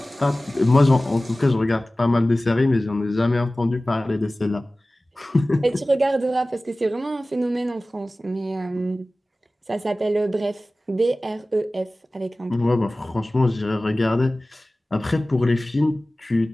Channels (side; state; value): both; normal; correlation 0.97